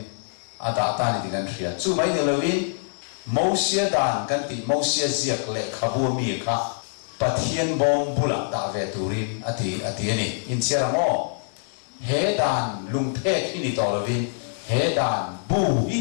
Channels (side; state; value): right; silent; digital silence